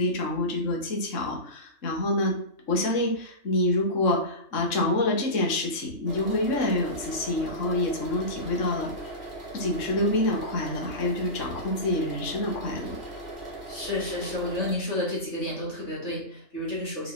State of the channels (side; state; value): right; late; 3.6 ms